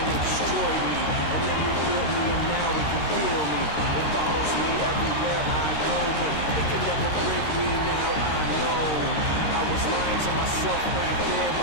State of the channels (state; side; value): late; right; 13 ms